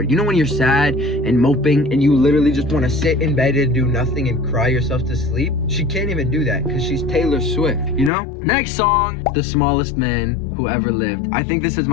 You know when you're sad and moping and you literally just want to sit in bed and do nothing and cry yourself to sleep? She can't even do that because she's Taylor Swift, you know? Next song, The Smallest Man Who Ever Lived. I think this is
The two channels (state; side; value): drops out; right; at 8.1 s